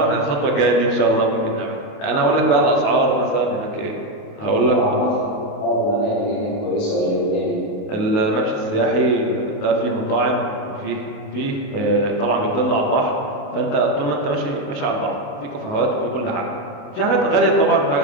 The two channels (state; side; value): late; right; 28 ms